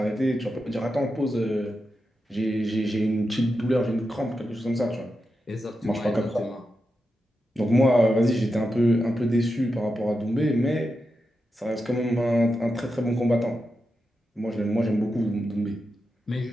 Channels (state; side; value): normal; both; correlation 0.88